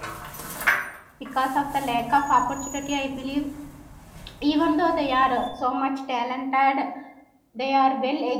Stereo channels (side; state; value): both; identical; correlation 1.00